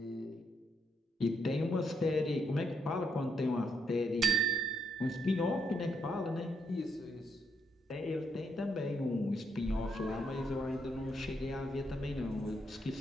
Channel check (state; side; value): normal; both; correlation 0.77